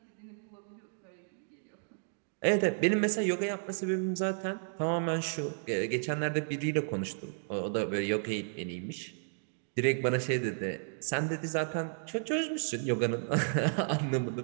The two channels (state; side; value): silent; left; digital silence